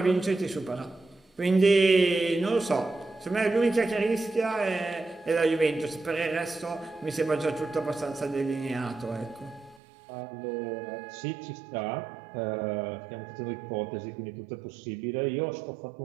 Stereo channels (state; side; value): drops out; left; at 9.8 s